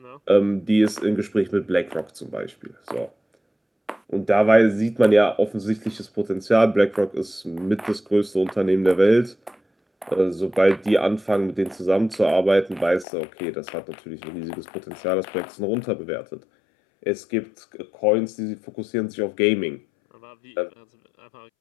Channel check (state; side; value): drops out; right; at 13.1 s